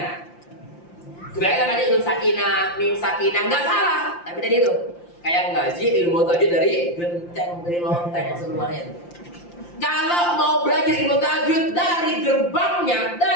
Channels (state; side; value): late; right; 5.8 ms